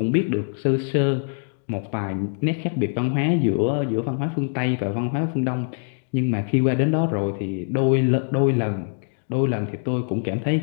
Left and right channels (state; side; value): silent; right; digital silence